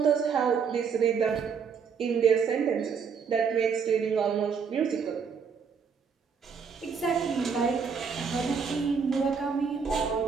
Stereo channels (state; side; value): quieter; left; 6.2 dB